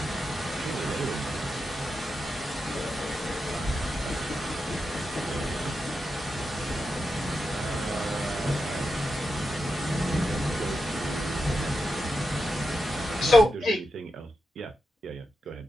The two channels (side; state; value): both; normal; correlation 0.88